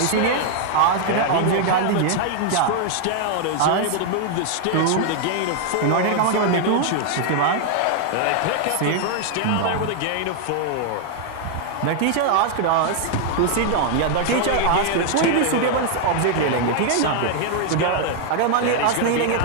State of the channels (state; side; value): different; both; correlation 0.00